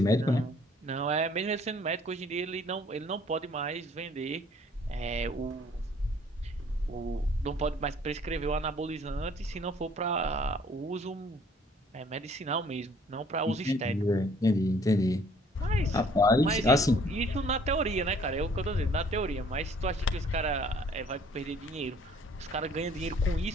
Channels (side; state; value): both; normal; correlation 0.58